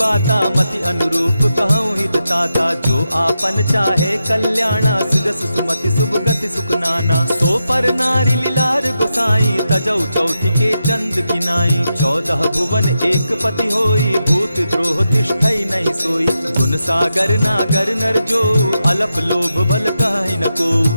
मति अनुरूप कहूँ हित ताता। जो आपन चाहे कल्याणा, सुजस सुमति शुभ गति सुख नाना। सो पर नारी लीलार गोसाई, तजौ चौथि के चंद किनाई। 14 भुवन एक पति होई, भूत द्रोह तिष्ठई नहीं सोई। गुण सागर नागर नर जो, अलप लोभ बल कहि न को।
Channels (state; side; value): inverted; both; correlation -0.88